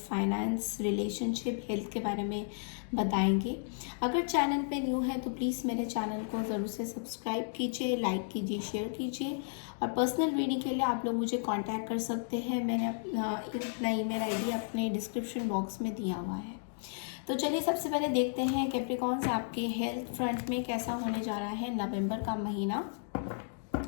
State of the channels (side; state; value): right; silent; digital silence